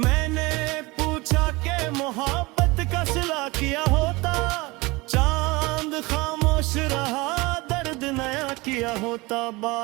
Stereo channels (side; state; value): left; quieter; 23.3 dB